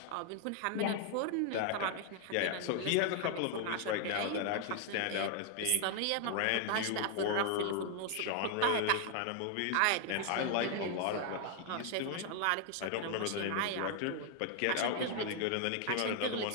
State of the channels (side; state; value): both; different; correlation 0.00